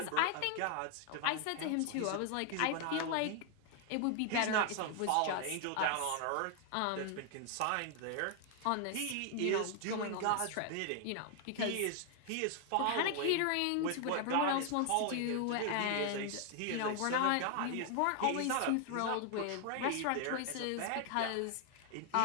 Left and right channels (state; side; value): different; both; correlation 0.00